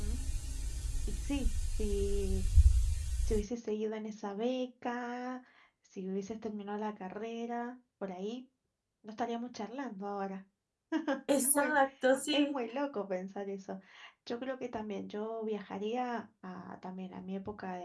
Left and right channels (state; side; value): identical; both; correlation 1.00